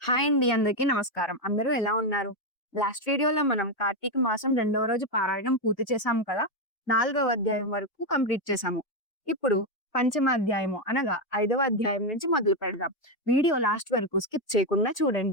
Hi అండి. అందరికీ నమస్కారం. అందరూ ఎలా ఉన్నారు? లాస్ట్ వీడియోలో మనం కార్తీక మాసం రెండవ రోజు పారాయణం పూర్తి చేశాం కదా! నాలుగవ అధ్యాయం వరకు కంప్లీట్ చేశాము. ఇప్పుడు పంచమ అధ్యాయము అనగా ఐదవ అధ్యాయం నుంచి మొదలు పెడదాం. వీడియో లాస్ట్ వరకు స్కిప్ చేయకుండా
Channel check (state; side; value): late; right; 2.2 ms